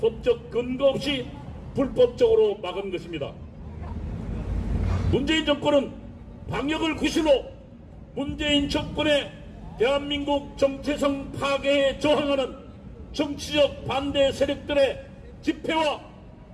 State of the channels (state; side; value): identical; both; correlation 1.00